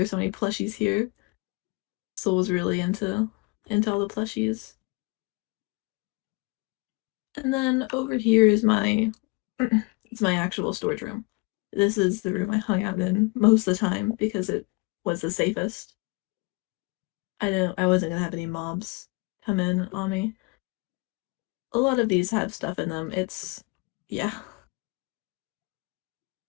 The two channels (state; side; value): quieter; right; 28.7 dB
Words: so many plushies here. Soul was really into all the plushies. And then over here is my it's my actual storage room. This is the room I hung out in most of the time because it was the safest. I wasn't gonna have any mobs come in on me. A lot of these have stuff in them. Yeah.